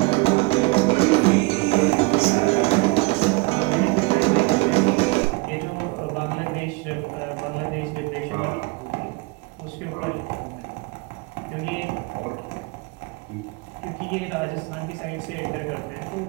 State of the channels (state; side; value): quieter; left; 25.7 dB